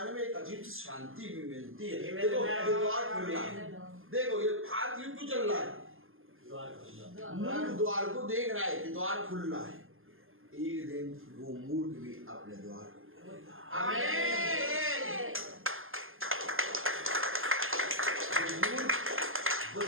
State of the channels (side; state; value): left; late; 0.59 ms